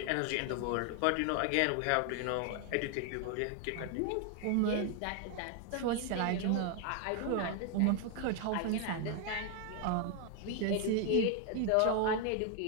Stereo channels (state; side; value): different; both; correlation 0.00